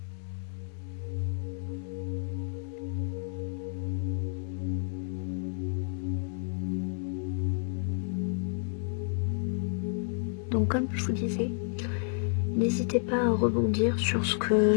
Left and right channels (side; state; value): right; silent; 57 dB below the other